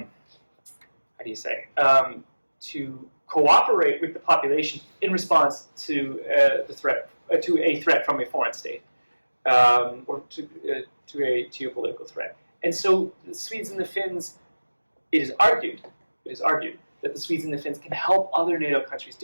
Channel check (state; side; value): inverted; both; correlation -1.00